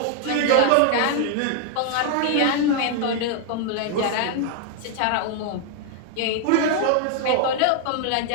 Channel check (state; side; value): different; both; correlation 0.00